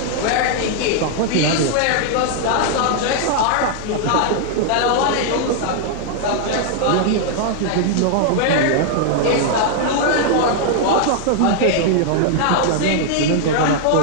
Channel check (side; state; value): both; different; correlation -0.01